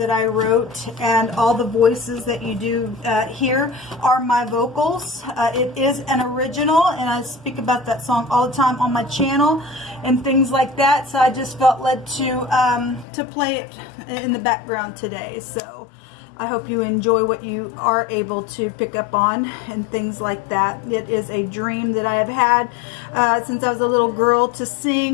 I wrote, and all the voices that you do hear are my vocals. It is an original, and I speak about that song all the time on my channel and things like that. So I just felt led to play it in the background today. So I hope you enjoy what you are able to pick up on and things like that. It is a dream that I have had since I was a little girl to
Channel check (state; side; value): drops out; right; at 13.1 s